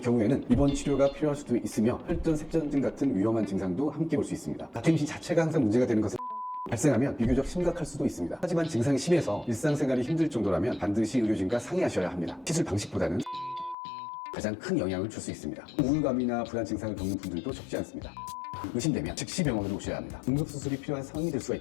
입원 치료가 필요할 수도 있으며 혈전, 색전증 같은 위험한 증상도 함께 올 수 있습니다. 다트 임신 자체가 항상 문제가 되는 것은 발생하면 비교적 심각할 수도 있습니다. 하지만 증상이 심해서 일상생활이 힘들 정도라면 반드시 의료진과 상의하셔야 합니다. 시술 방식보다는 가장 큰 영향을 줄 수 있습니다. 우울감이나 불안 증상을 겪는 분들도 적지 않습니다. 의심되면 즉시 병원으로 오셔야 합니다. 응급수술이 필요한 상황이 될 수가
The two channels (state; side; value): drops out; right; at 13.8 s